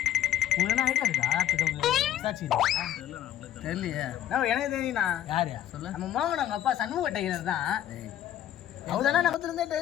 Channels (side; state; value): right; quieter; 11.7 dB